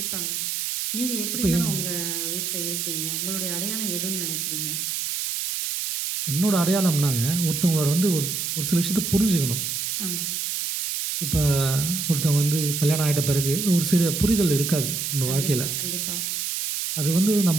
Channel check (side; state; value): right; noise; hiss, 2 dB below the sound